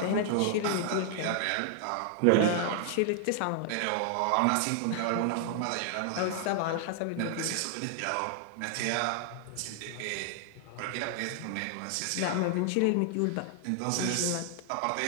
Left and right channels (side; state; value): both; different; correlation 0.00